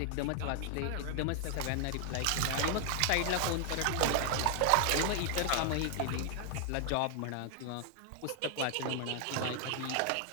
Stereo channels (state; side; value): different; both; correlation 0.00